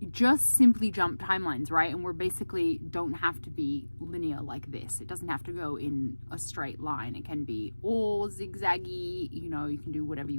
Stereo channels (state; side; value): inverted; both; correlation -1.00